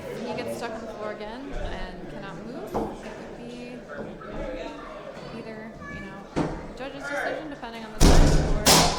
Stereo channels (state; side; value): identical; both; correlation 1.00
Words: he gets stuck on the floor again and cannot move, it would be either, judge's decision depending on the time or